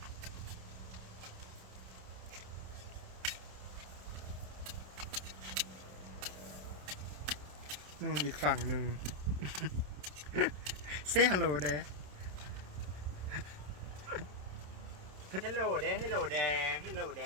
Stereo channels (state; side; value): late; left; 27 ms